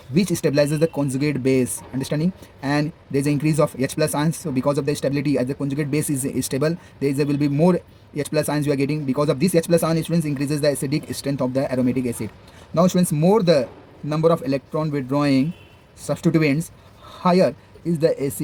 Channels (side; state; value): both; identical; correlation 1.00